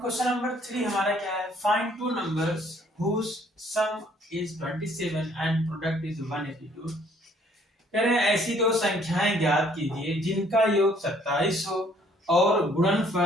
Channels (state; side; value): normal; both; correlation 0.62